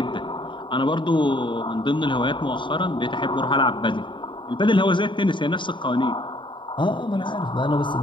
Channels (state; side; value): late; right; 0.23 ms